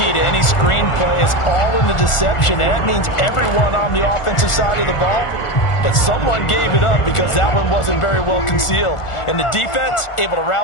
to any screen play is all in the deception, and that means everyone on the offensive side of the ball. But someone gave it up because that one wasn't very well concealed. And the defense able to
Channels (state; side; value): late; right; 1.4 ms